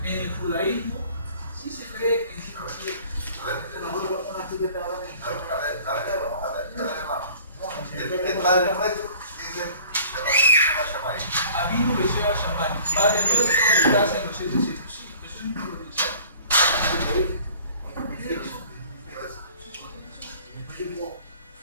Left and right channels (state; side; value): inverted; both; correlation -0.50